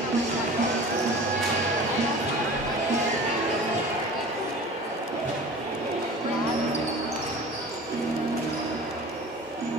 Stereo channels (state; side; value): normal; both; correlation 0.40